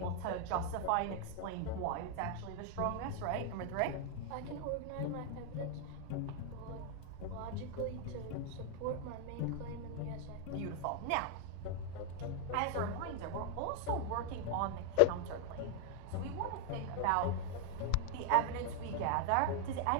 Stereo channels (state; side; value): different; both; correlation 0.00